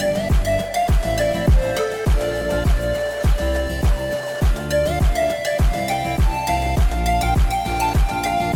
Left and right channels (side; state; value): both; identical; correlation 1.00